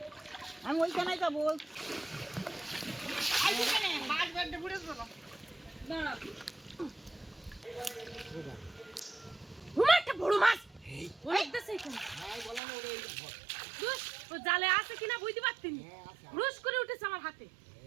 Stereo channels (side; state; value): left; drops out; at 12.6 s